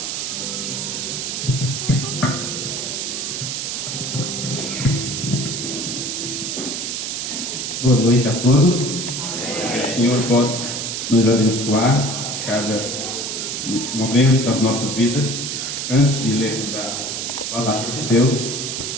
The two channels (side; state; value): right; noise; hiss, 3 dB below the sound